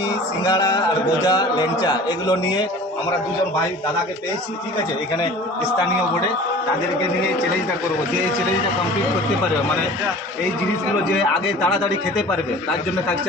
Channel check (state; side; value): normal; both; correlation 0.43